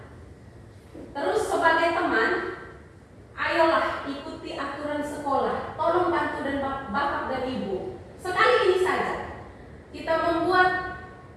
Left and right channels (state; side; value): identical; both; correlation 1.00